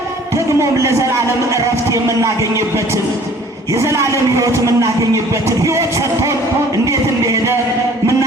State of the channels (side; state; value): both; normal; correlation 0.52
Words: ደግሞም ለዘላለም ዕረፍት የምናገኝበትን የዘላለም ሕይወት የምናገኝበትን ሕይወት ሰጥቶን እንዴት እንደሄደ